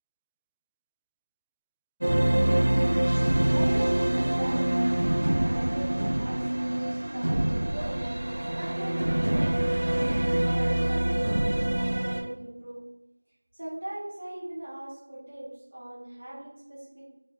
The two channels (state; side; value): inverted; both; correlation -1.00